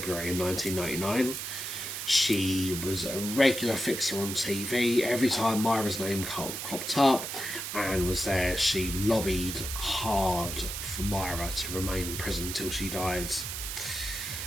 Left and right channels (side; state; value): right; noise; hiss, 5 dB below the sound